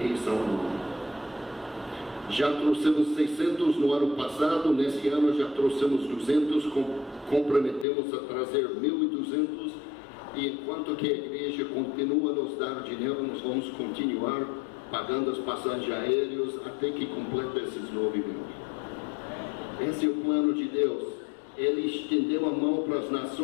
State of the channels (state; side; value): drops out; right; at 7.9 s